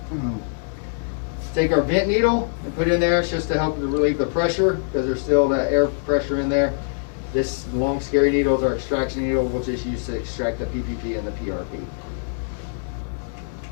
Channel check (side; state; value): right; silent; digital silence